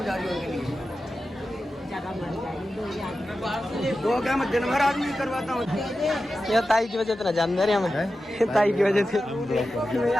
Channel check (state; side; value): normal; both; correlation 0.92